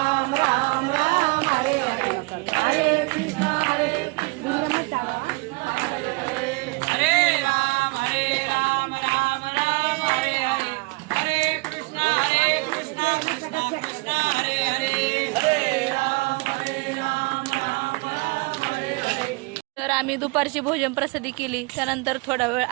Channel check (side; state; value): left; quieter; 26.8 dB